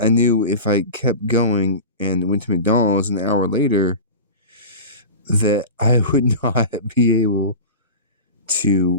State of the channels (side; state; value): both; inverted; correlation -0.30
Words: knew if I kept going and went to McDonald's an hour later, that I would not be able